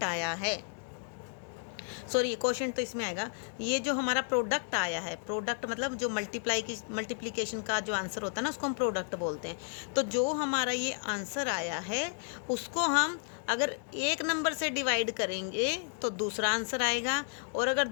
आया है, सॉरी क्वोशिएंट तो इसमें आएगा, ये जो हमारा प्रोडक्ट आया है, प्रोडक्ट मतलब जो मल्टीप्लिकेशन का जो आंसर होता है ना, उसको हम प्रोडक्ट बोलते हैं। तो जो हमारा ये आंसर आया है उसको हम अगर एक नंबर से डिवाइड करेंगे तो दूसरा आंसर आएगा, और अगर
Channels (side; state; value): right; silent; 56 dB below the other